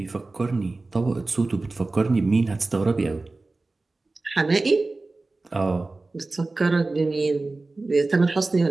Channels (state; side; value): quieter; left; 3.3 dB